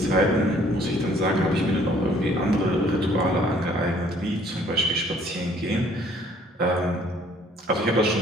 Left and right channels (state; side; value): normal; both; correlation 0.59